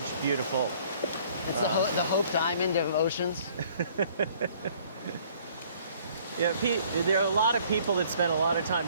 beautiful. It's the Hope Diamond of oceans. Yeah, there are a lot of people that spend a lot of time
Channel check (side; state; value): both; inverted; correlation -0.58